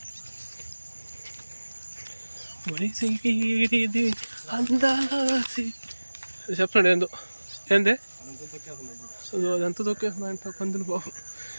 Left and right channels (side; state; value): both; inverted; correlation -1.00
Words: చెప్పండి ఏంది అదంతా తొక్కేస్తుందంట పందులు. పాపం